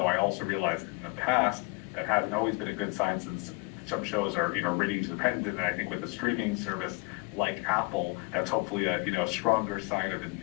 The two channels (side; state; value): right; quieter; 26.9 dB